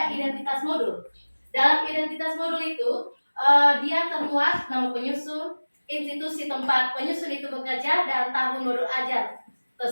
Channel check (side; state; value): both; inverted; correlation -1.00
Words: identitas modul. Dalam identitas modul itu dia termuat nama penyusun, institusi tempat penyusun itu bekerja, dan tahun modul ajar